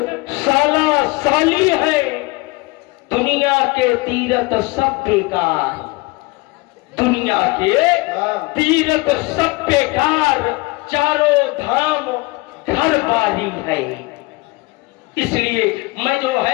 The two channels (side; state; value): right; quieter; 23.7 dB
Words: साला साली है। दुनिया के तीर्थ सब बेकार, दुनिया के तीर्थ सब बेकार, चारों धाम घर बारी है। इसलिए मैं जो